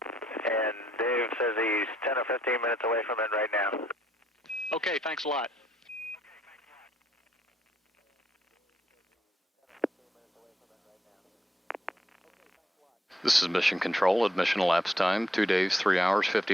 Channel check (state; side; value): normal; both; correlation 0.73